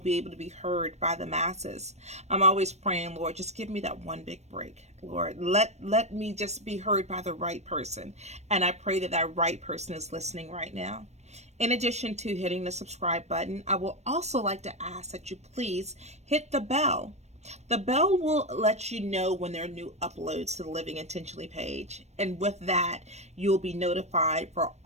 able to be heard by the masses. I'm always praying, Lord, just give me that one big break. Lord, let me just be heard by the right person. And I pray that that right person is listening right now. In addition to hitting the subscribe button, I will also like to ask that you please hit the bell. The bell will let you know when there are new uploads to the Living Intentionally page. And with that, you'll be notified for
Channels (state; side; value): late; left; 0.32 ms